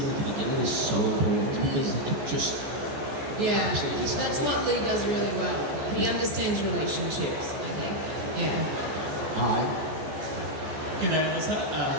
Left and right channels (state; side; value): late; left; 14 ms